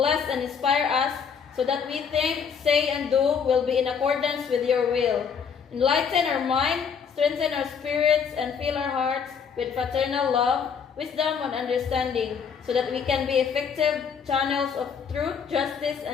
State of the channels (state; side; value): quieter; right; 6.7 dB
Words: and inspire us so that we think, say, and do will be in accordance with your will. Enlighten our mind, strengthen our spirits, and fill our hearts with fraternal love, wisdom, and understanding, so that we can be effective channels of truth, justice,